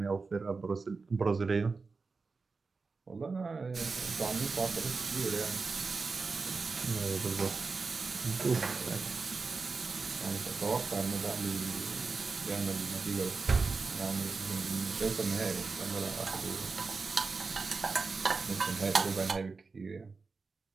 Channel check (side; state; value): left; quieter; 4.3 dB